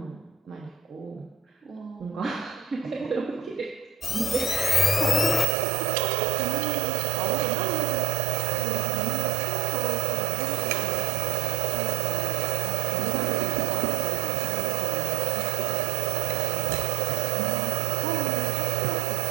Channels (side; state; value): left; drops out; at 5.5 s